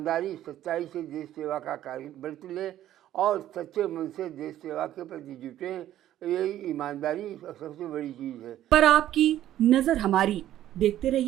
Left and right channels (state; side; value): quieter; left; 12.5 dB